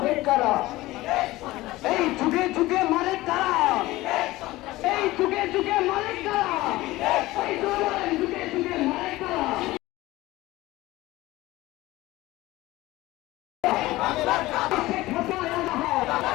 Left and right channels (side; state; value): right; quieter; 18.3 dB